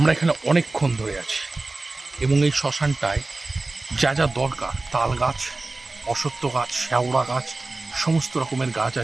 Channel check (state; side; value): quieter; left; 3.2 dB